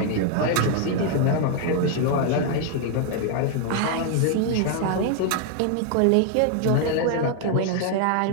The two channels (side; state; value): both; different; correlation 0.00